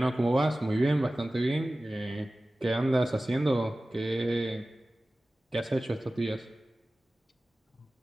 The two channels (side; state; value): both; normal; correlation 0.97